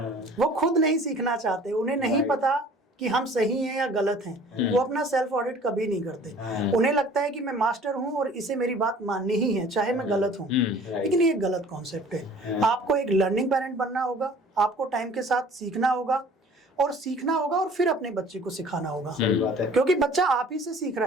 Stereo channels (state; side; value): normal; both; correlation 0.49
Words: वो खुद नहीं सीखना चाहते, उन्हें नहीं पता कि हम सही हैं या गलत हैं। वो अपना सेल्फ ऑडिट कभी नहीं करते। उन्हें लगता है कि मैं मास्टर हूं और इसे मेरी बात माननी ही है चाहे मैं गलत हूं। लेकिन ये गलत कॉन्सेप्ट है। आपको एक लर्निंग पेरेंट बनना होगा, आपको टाइम के साथ सीखना होगा और फिर अपने बच्चे को सिखाना होगा। सही बात है। क्योंकि बच्चा आप ही से सीख रहा